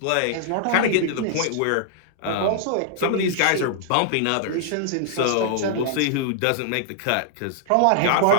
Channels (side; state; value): both; different; correlation -0.01